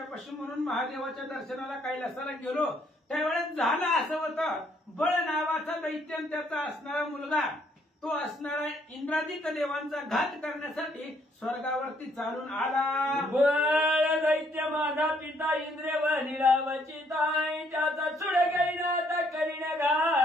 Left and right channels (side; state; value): both; normal; correlation 0.68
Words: म्हणून महादेवाच्या दर्शनाला कैलासाला गेलो. त्यावेळेस झालं असं होतं, बळ नावाचा दैत्य आणि त्याचा असणारा मुलगा, तो असणारा इंद्रादिक देवांचा घात करण्यासाठी स्वर्गावरती चालून आला. बळ दैत्य माझा पिता इंद्र वनिरावची ताई, त्याचा चुड घेईना आता करीन